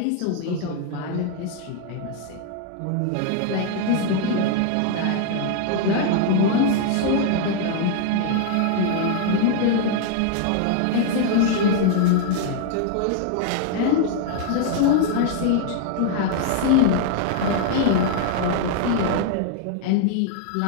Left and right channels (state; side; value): different; both; correlation 0.00